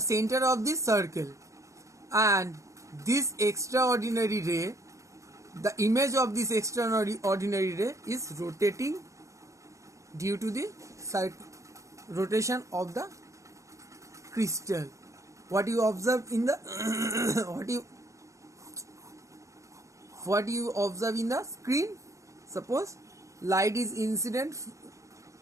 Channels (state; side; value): late; left; 0.15 ms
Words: center of this circle, and this extraordinary ray, the image of this extraordinary ray is rotating due to the rotation of the crystal. What you observe in the what you observe in the screen, suppose light is incident.